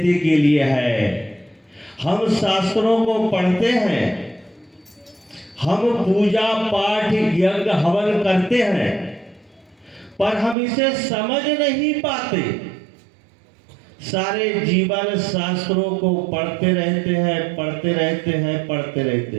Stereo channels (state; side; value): drops out; left; at 10.6 s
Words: के लिए है। हम शास्त्रों को पढ़ते हैं, हम पूजा पाठ यज्ञ हवन करते हैं, पर हम इसे समझ नहीं पाते। सारे जीवन शास्त्रों को पढ़ते रहते हैं, पढ़ते रहते हैं, पढ़ते